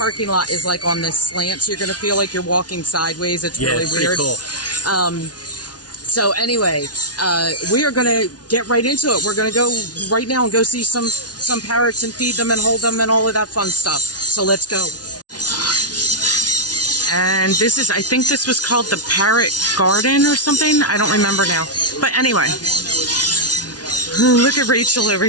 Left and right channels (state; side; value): late; right; 0.69 ms